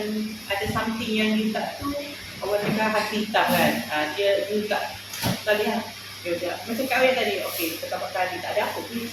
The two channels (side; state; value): both; identical; correlation 1.00